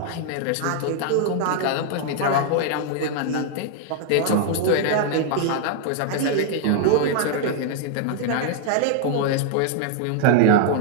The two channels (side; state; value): both; different; correlation 0.00